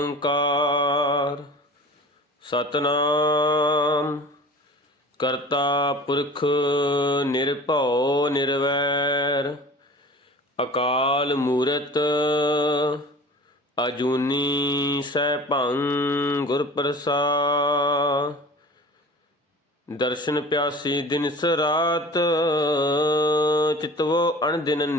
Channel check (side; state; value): both; normal; correlation 0.41